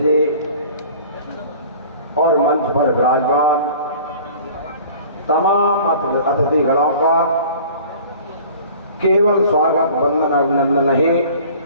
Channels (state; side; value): inverted; both; correlation -0.46